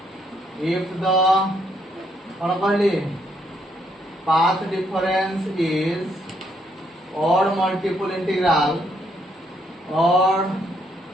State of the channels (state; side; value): normal; both; correlation 0.73